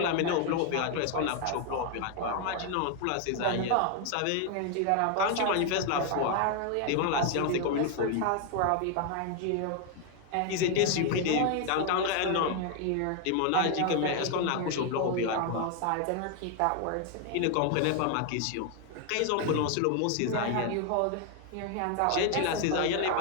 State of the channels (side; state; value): both; different; correlation 0.01